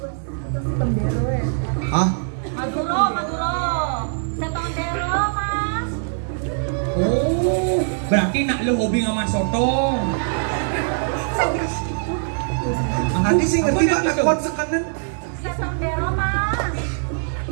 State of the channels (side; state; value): left; silent; 64 dB below the other